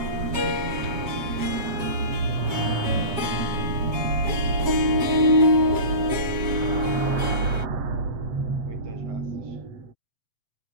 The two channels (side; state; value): left; late; 7.6 ms